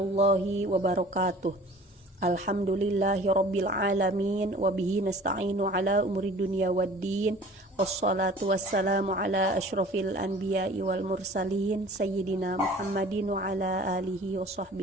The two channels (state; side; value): normal; both; correlation 0.46